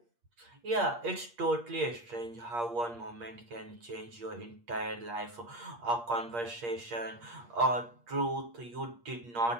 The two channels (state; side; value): late; left; 8.5 ms